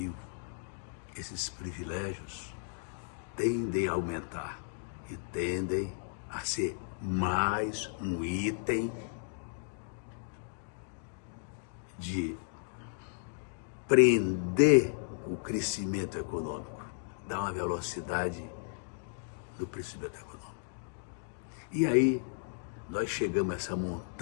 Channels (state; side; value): silent; right; digital silence